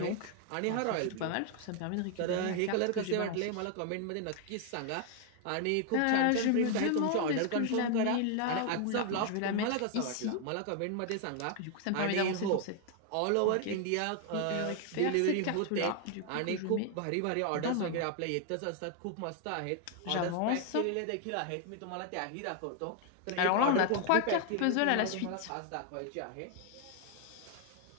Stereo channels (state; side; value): different; both; correlation 0.00